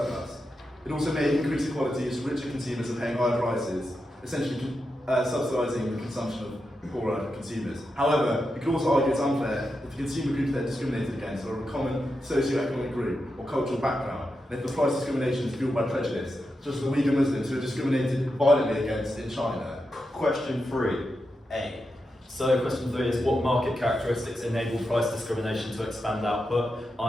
It also may increase equality as richer consumers are paying higher prices, essentially subsidising the consumption of poorer consumers. However, you could also argue it's unfair if the consumer groups they're discriminated against are of a common socio-economic group or cultural background, and if the price discrimination is fueled by prejudice, such as the Uyghur Muslims who are discriminated violently against in China. Question 3A. So question 3 is what market characteristics enable price discrimination to expand output,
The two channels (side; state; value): both; normal; correlation 0.87